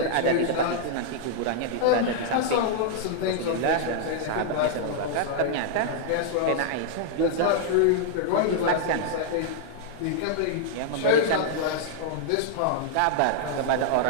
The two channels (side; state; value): both; different; correlation -0.01